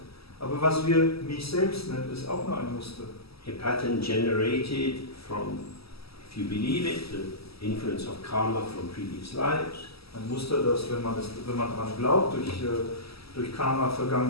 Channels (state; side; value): late; right; 0.76 ms